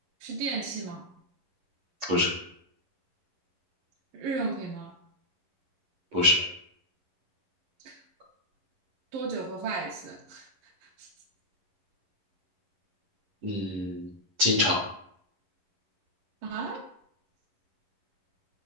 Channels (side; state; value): left; late; 10 ms